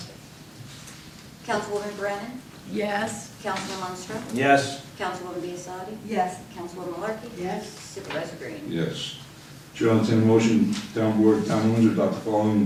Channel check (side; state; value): both; identical; correlation 1.00